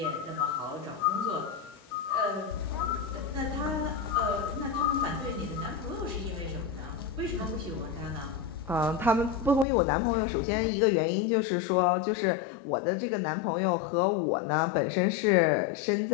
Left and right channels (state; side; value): drops out; right; at 9.7 s